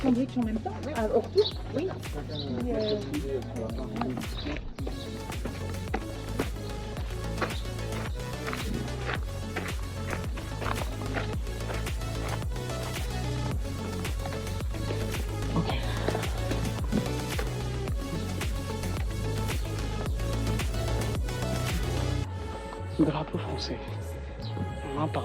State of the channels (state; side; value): identical; both; correlation 1.00